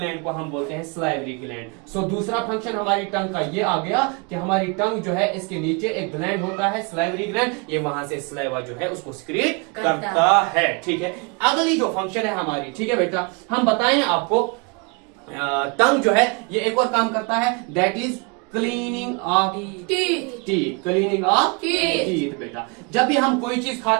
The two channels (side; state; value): left; quieter; 31.8 dB